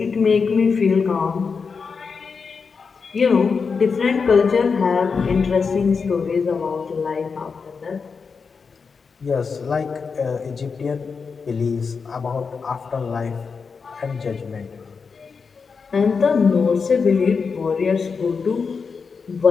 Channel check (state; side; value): quieter; right; 5.3 dB